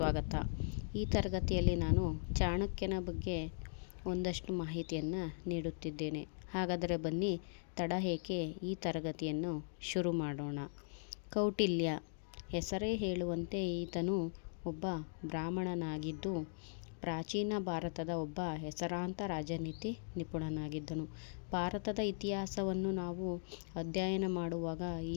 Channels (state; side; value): silent; right; digital silence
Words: ಈ ತರಗತಿಯಲ್ಲಿ ನಾನು ಚಾಣಕ್ಯನ ಬಗ್ಗೆ ಒಂದಷ್ಟು ಮಾಹಿತಿಯನ್ನು ನೀಡುತ್ತಿದ್ದೇನೆ. ಹಾಗಾದರೆ ಬನ್ನಿ ತಡ ಏಕೆ ಈ ತರಗತಿಯನ್ನು ಶುರು ಮಾಡೋಣ. ಕೌಟಿಲ್ಯ ಹೆಸರೇ ಹೇಳುವಂತೆ ಈತನು ಒಬ್ಬ ಬ್ರಾಹ್ಮಣನಾಗಿದ್ದು ಪ್ರಾಚೀನ ಭಾರತದ ಒಬ್ಬ ಹೆಸರಾಂತ ರಾಜನೀತಿ ನಿಪುಣನಾಗಿದ್ದನು. ಭಾರತದ ಇತಿಹಾಸವನ್ನು ನಾವು ಅಧ್ಯಯನ ಮಾಡುವಾಗ